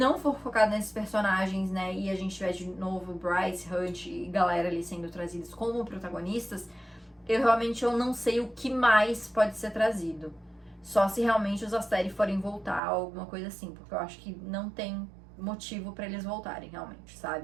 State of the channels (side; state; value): left; drops out; at 12.8 s